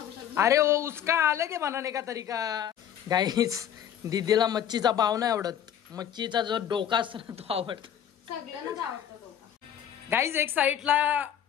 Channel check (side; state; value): right; quieter; 9.6 dB